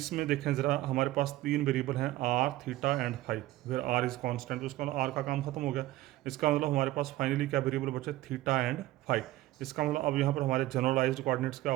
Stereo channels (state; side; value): quieter; left; 16.2 dB